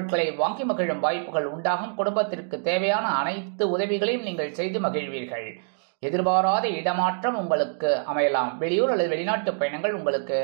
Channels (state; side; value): silent; left; digital silence